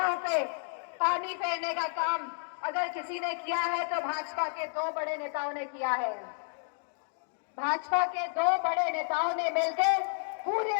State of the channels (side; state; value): right; silent; digital silence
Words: पे पानी फेरने का काम अगर किसी ने किया है तो भाजपा के 2 बड़े नेताओं ने किया है। भाजपा के 2 बड़े नेताओं ने मिलकर